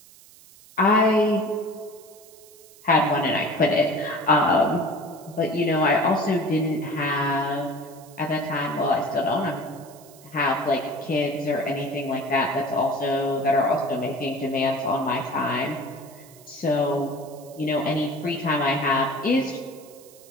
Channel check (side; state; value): right; noise; hiss, 23 dB below the sound